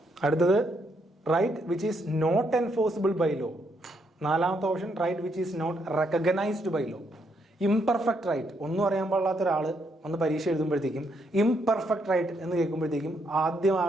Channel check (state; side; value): normal; both; correlation 0.75